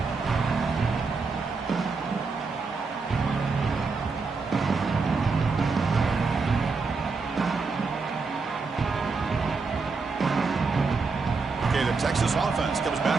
Okay, the Texas offense comes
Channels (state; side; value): quieter; left; 4.4 dB